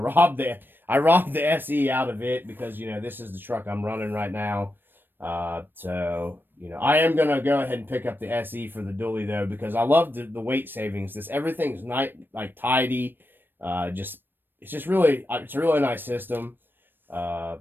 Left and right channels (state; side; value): late; left; 0.095 ms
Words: the SE out of it because, this is the truck I'm running right now. So, I am going to go ahead and pick up the SE for the dually though, because I love the weight savings. Everything's tidy. It's a really nice system. My